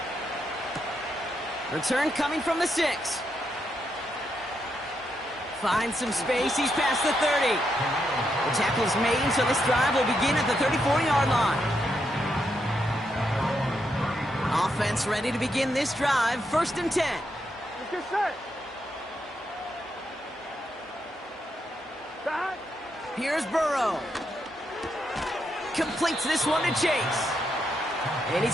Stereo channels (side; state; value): both; normal; correlation 0.81